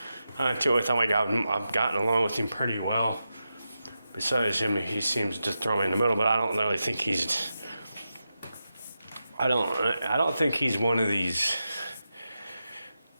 to it with him. I've gotten along with him pretty well. Besides him, he seems to throw me in the middle, but I don't really think he's. I don't think he's one of these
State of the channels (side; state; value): both; inverted; correlation -0.89